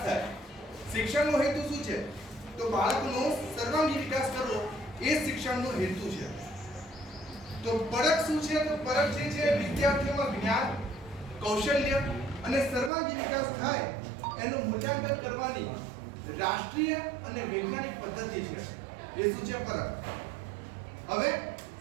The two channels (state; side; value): drops out; left; at 12.9 s